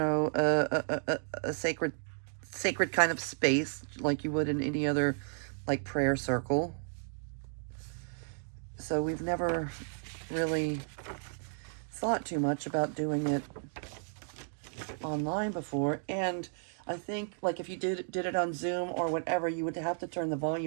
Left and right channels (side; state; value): left; silent; digital silence